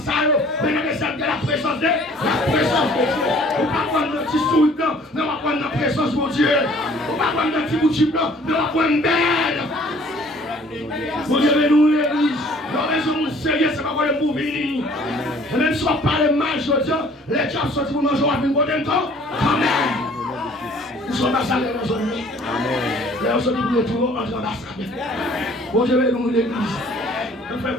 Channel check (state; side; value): normal; both; correlation 0.55